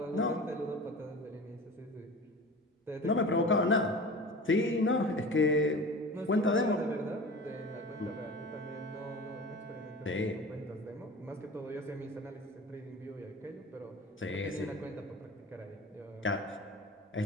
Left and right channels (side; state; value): both; normal; correlation 0.36